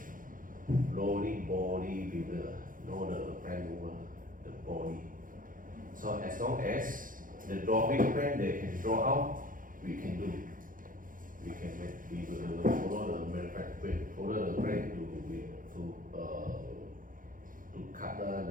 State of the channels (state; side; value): late; left; 0.40 ms